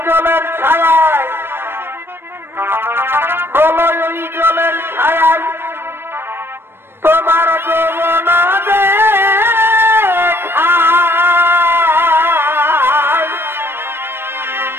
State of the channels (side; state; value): left; late; 0.11 ms